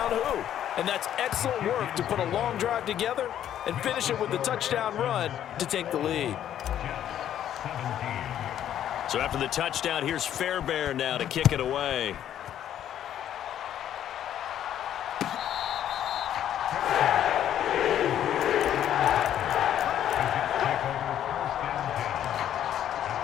who. And that's excellent work to put a long drive together and finish it with the touchdown run to take the lead. So after the touchdown, here's Fairbairn now to kick it away.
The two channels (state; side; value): quieter; right; 10.7 dB